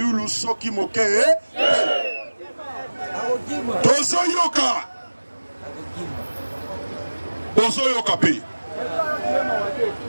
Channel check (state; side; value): inverted; both; correlation -1.00